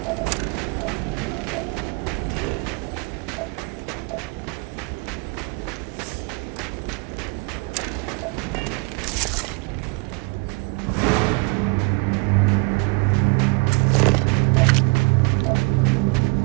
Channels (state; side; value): quieter; left; 30.5 dB